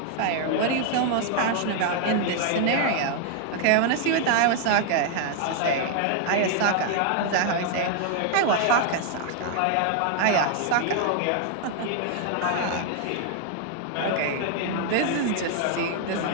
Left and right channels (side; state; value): both; different; correlation 0.00